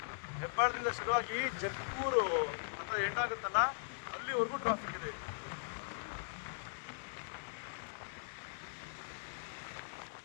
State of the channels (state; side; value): silent; right; digital silence